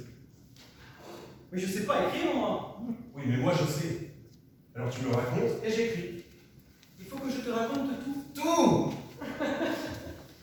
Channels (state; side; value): identical; both; correlation 1.00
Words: Mais je sais pas écrire, moi. Oui, mais moi je sais. Alors tu me racontes Et j'écris. Il faut que je te raconte tout. Tout.